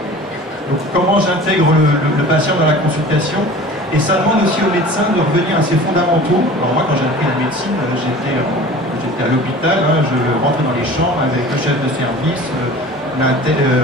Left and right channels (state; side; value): normal; both; correlation 0.41